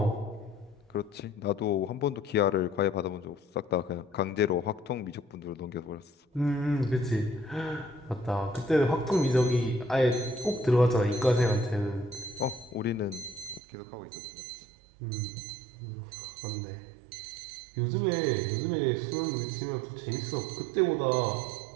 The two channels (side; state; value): left; drops out; at 13.6 s